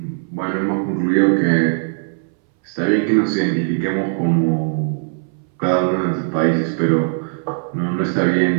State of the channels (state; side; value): silent; left; 63 dB below the other